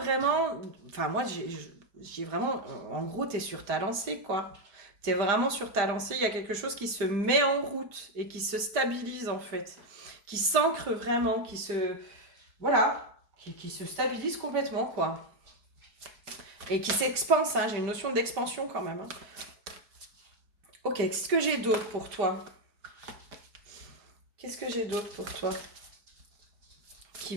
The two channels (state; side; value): late; left; 5.0 ms